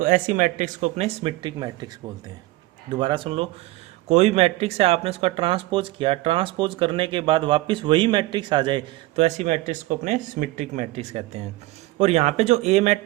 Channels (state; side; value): quieter; left; 18.9 dB